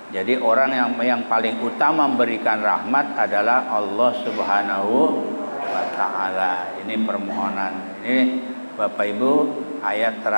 Jadi orang yang paling utama memberikan rahmat adalah Allah Subhanahu wa taala. Ini permohonan ini Bapak Ibu, ayat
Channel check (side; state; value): both; inverted; correlation -1.00